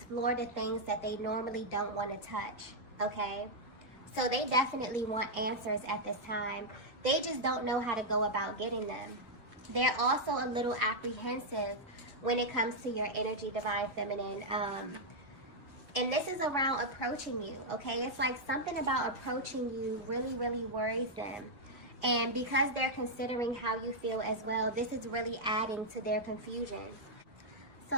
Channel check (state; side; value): late; left; 1.5 ms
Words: the things that they normally don't want to touch, okay? So they definitely want answers at this time. They just don't know how to go about getting them. They're also a little apprehensive when it comes to your energy, Divine Feminine. And this is around approaching you, okay? It's like something about approaching you really, really worries them. And because they're considering how you feel as well, this is really adding to their confusion. So